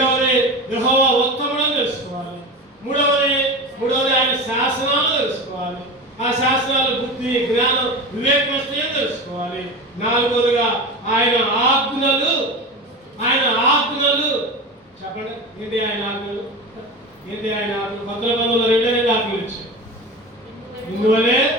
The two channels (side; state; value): both; normal; correlation 0.28